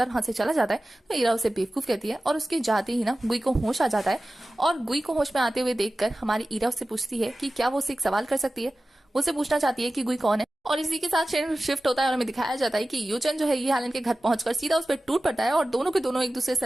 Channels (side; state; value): both; normal; correlation 0.96